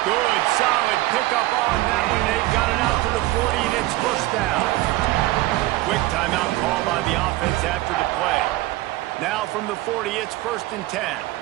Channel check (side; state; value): left; quieter; 18.2 dB